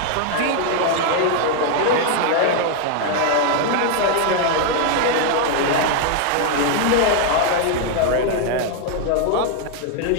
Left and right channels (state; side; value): different; both; correlation 0.00